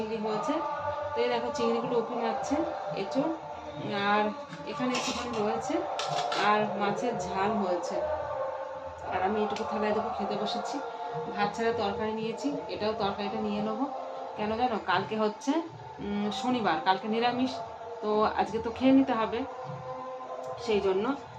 হয়েছে। তো এই দেখো চিংড়িগুলো উঁকি মারছে এঁচোড়, আর এখানে একটুখানি রয়েছে, আর মাছের ঝাল হয়েছে। আর আমি এটুকু থালায় দেখো খেতে বসেছি। ভাত ছাড়া তরকারি নিয়েছি, এটাও তরকারিটা নিয়ে নেবো। কেন জানো, কালকে হচ্ছে শনিবার, কালকে নিরামিষ। তো আজকে তো খেয়ে নিতে হবে, সেই জন্য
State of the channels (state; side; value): identical; both; correlation 1.00